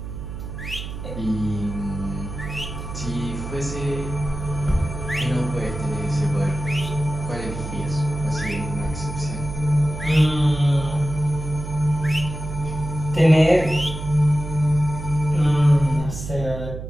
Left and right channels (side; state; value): right; noise; hum, 8 dB below the sound